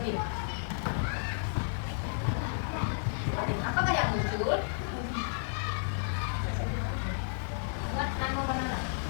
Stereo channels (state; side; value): silent; right; 56 dB below the other